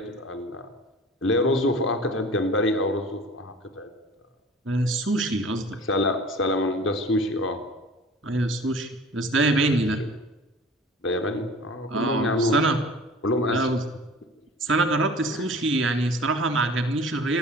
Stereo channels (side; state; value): both; normal; correlation 0.44